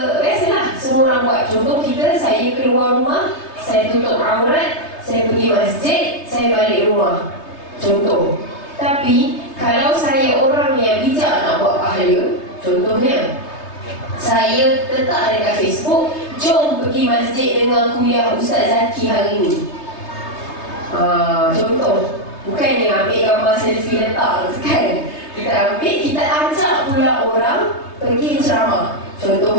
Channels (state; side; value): late; right; 3.3 ms